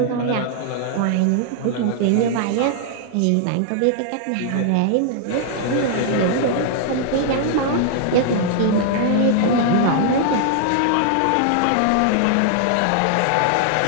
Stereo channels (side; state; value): both; different; correlation 0.00